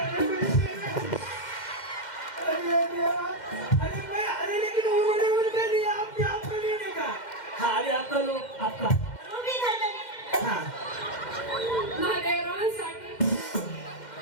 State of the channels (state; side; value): late; right; 2.1 ms